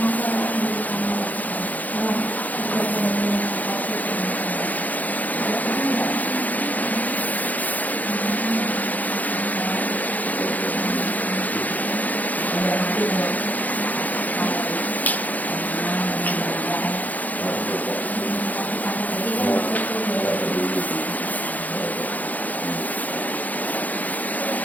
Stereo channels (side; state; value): right; late; 0.080 ms